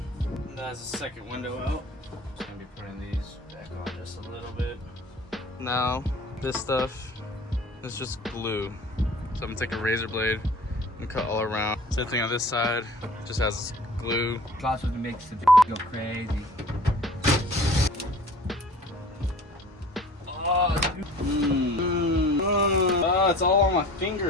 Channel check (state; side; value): normal; both; correlation 0.46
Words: That's the second window out. Just gonna be putting these back on just a little bit. Now, this stuff is just glue. So I'm gonna take a razor blade and cut all around. Same thing on this side, just has glue. That's what makes the go crazy. Oh, it's all on my